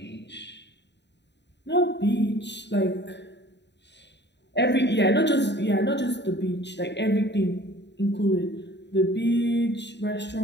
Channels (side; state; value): right; late; 0.51 ms